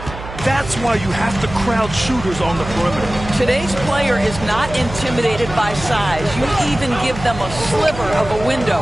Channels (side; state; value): right; noise; hum, 11 dB below the sound